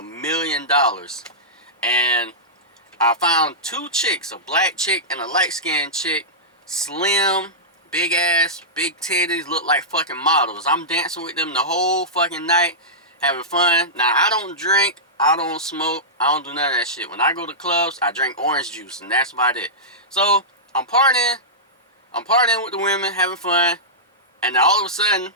million. And I found two chicks, a black chick and a light-skinned chick, slim, big ass, big titties, look like fucking models. I'm dancing with them the whole fucking night, having fun. Now, I don't drink, I don't smoke, I don't do none of that shit. When I go to clubs, I drink orange juice, and that's about it. So, I'm partying with the women, having fun, and then all of a sudden,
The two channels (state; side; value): normal; both; correlation -0.15